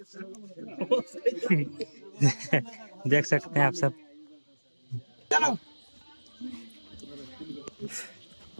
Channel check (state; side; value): inverted; both; correlation -1.00